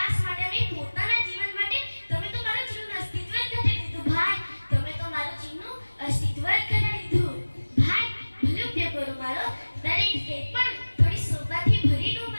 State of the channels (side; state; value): both; inverted; correlation -1.00